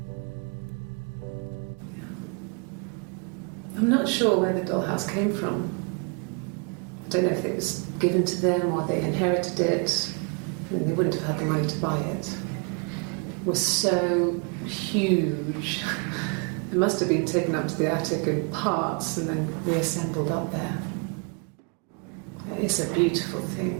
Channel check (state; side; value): quieter; left; 36.6 dB